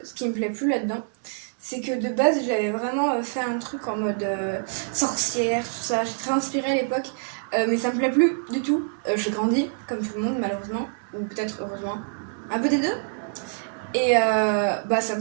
ce qui me plaît plus là-dedans, c'est que de base, j'avais vraiment fait un truc en mode sorcière, tout ça. J'ai très inspirée à l'époque. Mais ça me plaît plus du tout. J'ai grandi, comme tout le monde, malheureusement. Ou peut-être heureusement. Un peu des deux. Et ça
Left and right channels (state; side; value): silent; left; digital silence